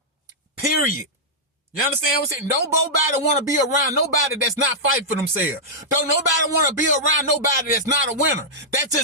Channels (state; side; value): normal; both; correlation -0.10